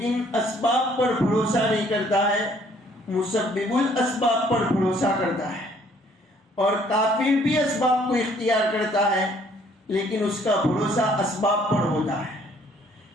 اسباب پر بھروسہ نہیں کرتا ہے، مسبب الاسباب پر بھروسہ کرتا ہے، اور کافر بھی اسباب کو اختیار کرتا ہے لیکن اس کا بھروسہ اسباب پر ہوتا ہے۔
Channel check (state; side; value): normal; both; correlation 0.61